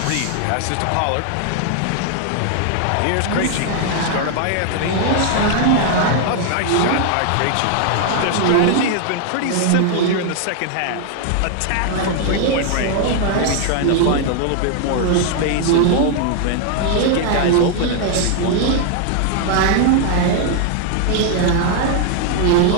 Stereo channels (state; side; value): different; both; correlation 0.00